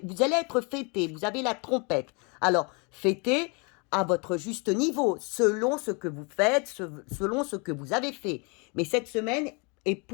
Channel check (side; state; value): right; quieter; 32.1 dB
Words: être fêté, vous avez la trompette. Alors, fêtez à votre juste niveau, selon ce que vous faites, selon ce que vous avez fait. Mais cette semaine est